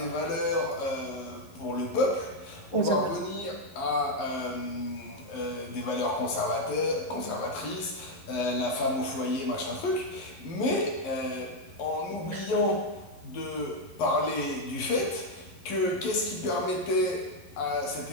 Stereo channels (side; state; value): right; late; 11 ms